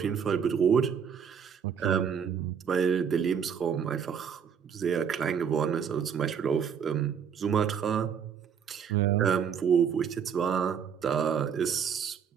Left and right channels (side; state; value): left; quieter; 7.4 dB